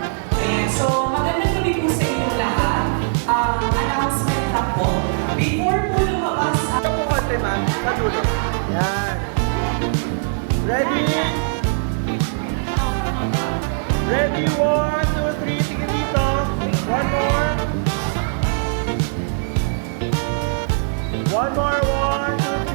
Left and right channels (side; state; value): left; silent; digital silence